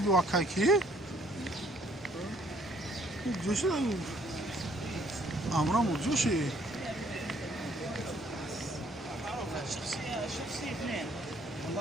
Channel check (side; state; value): both; normal; correlation 0.63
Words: اکاکی جوش امرامو جوشی